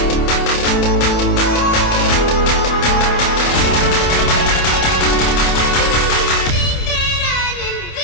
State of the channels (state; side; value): late; right; 28 ms